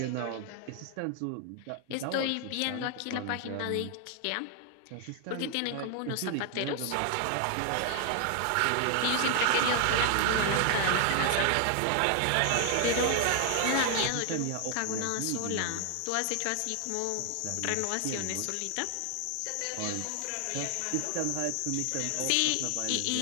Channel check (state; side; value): different; both; correlation 0.00